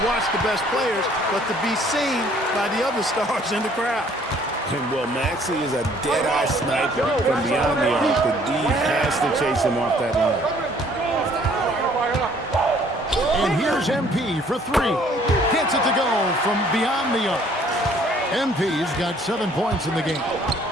watch the best players, but to be seen by the other stars in the crowd. And, well, Maxey is a dead-eye sniper from beyond the arc. The D has to chase him off that line. And here's MP for three. Gets it to go from beyond the arc. MP's got 7 points in the game.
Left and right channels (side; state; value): both; normal; correlation 0.59